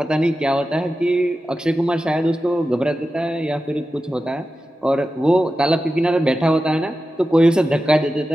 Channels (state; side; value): normal; both; correlation 0.93